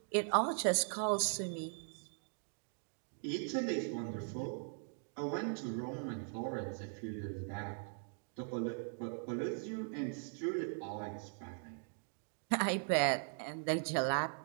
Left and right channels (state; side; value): silent; left; 51 dB below the other